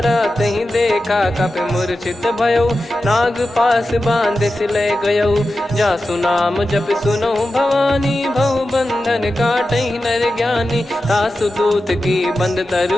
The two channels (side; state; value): both; normal; correlation 0.92